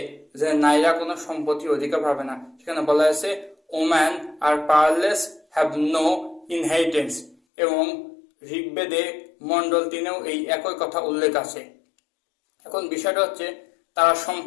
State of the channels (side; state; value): right; drops out; at 7.4 s